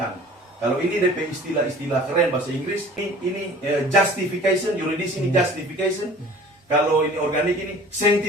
Kalau ini DP istilah keren bahasa Inggris, ini justification, yuridis ini justification. Kalau ini organik ini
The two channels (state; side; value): normal; both; correlation 0.47